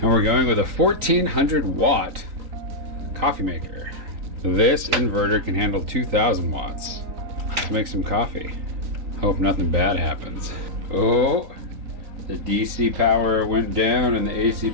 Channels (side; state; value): left; late; 3.8 ms